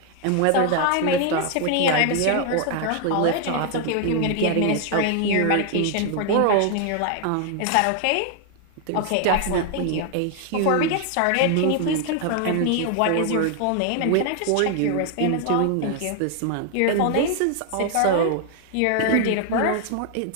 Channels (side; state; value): both; different; correlation 0.00